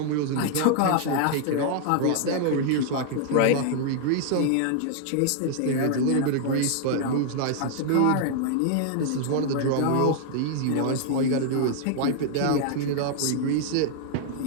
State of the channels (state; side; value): different; both; correlation 0.00